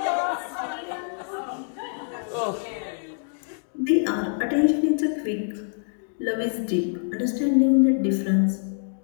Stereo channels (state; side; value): silent; right; digital silence